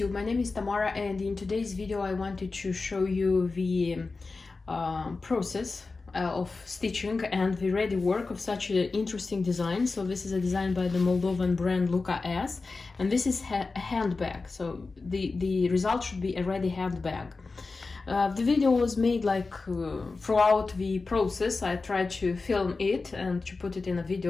my name is Tamara, and in today's video I wanted to show you the process of stitching and the ready work of such an interesting design. So this is a design by the Moldovan brand Luca-S, and this is a handbag. So the result should be a ready handbag. The video was made throughout the process. I tried to film it and to put it in a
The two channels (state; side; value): quieter; right; 3.9 dB